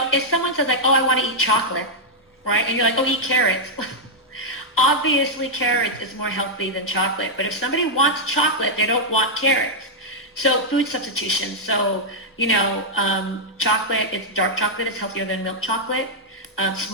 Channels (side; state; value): both; normal; correlation -0.05